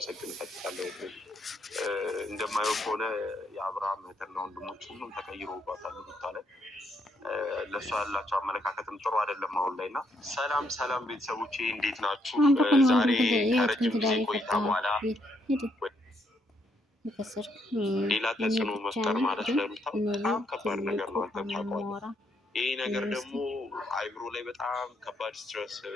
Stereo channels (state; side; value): normal; both; correlation 0.74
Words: እፈልጋለሁ። እንደማየው ከሆነ የአብርሃም እህትና ወንድሞች ሁሉም ተቀይሮባታል ሩታ ላይ። ለእሷ ያላቸው አመለካከትም ጥሩ አይደለም አሁን ላይ እና ሰላም ሰላም ቤተሰቦቼ እንዴት ናችሁ? ዛሬ ከረጅም ጊዜ ቆይታ በኋላ ሌላ ተጽዕኖ መፍጠር ማለት ለሩታ በጣም ከባድ ነገር ነው። አንተም ታውቀዋለህ። ይህ ነገር ደግሞ አይምሮ ላይ በጣም ከባድ ስትረስ